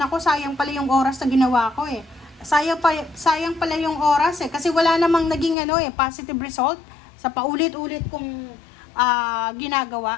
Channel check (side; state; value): right; drops out; at 5.6 s